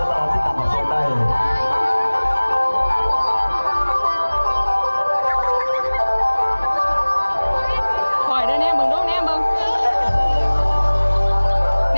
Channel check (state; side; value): inverted; both; correlation -1.00